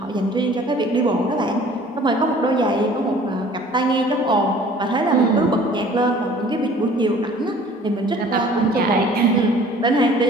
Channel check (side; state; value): both; normal; correlation 0.50